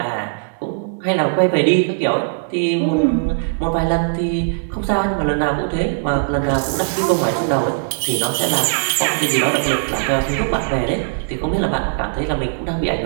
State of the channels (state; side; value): quieter; left; 37.4 dB